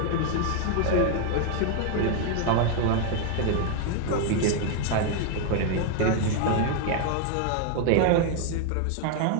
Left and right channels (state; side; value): different; both; correlation 0.00